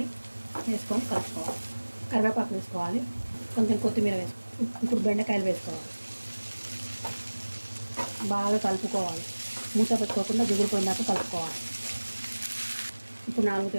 వేసుకొని కలుపుకోవాలి. కరివేపాకు వేసుకోవాలి. కొంచెం కొత్తిమీర వేసుకోవాలి. ఇప్పుడు బెండకాయలు వేసుకోవాలి. బాగా కలుపుకోవాలి. మూత పెట్టుకోకుండా జిగురుపోయినాక కలుపుకోవాలి. ఇప్పుడు 4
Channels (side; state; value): both; inverted; correlation -1.00